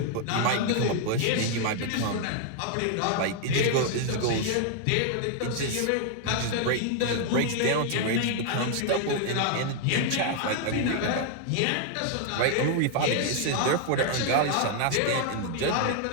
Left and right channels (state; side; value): different; both; correlation 0.00